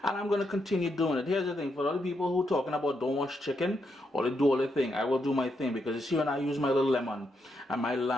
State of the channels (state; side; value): normal; both; correlation 0.81